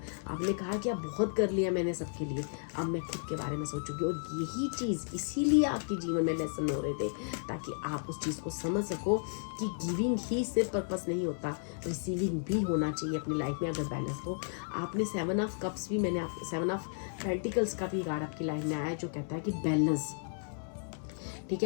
आपने कहा कि अब बहुत कर लिया मैंने सबके लिए, अब मैं खुद के बारे में सोचूंगी। और यही चीज़, इसीलिए आपके जीवन में लेसन हो रहे थे, ताकि आप उस चीज़ को समझ सको कि गिविंग ही सिर्फ पर्पस नहीं होता, रिसीविंग भी होना चाहिए अपनी लाइफ में अगर बैलेंस हो। आपने 7 ऑफ कप्स भी, मैंने आप 7 ऑफ पेंटिकल्स का भी कार्ड आपकी लाइफ में आया है, जो कहता है कि बैलेंस, ठीक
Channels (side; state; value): right; silent; 55 dB below the other